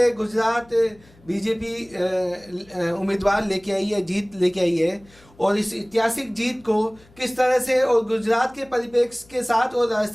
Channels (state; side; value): noise; left; hum, 27 dB below the sound